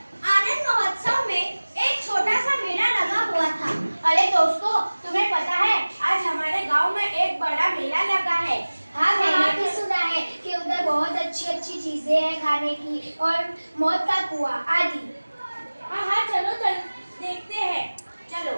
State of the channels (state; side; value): inverted; both; correlation -1.00